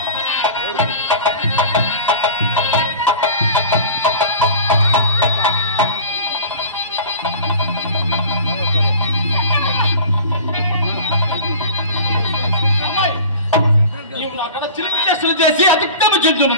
అమ్మాయి, నీవు నా కడ చిలిపి చేష్టలు చేసి అతిక్రమ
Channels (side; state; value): both; inverted; correlation -0.38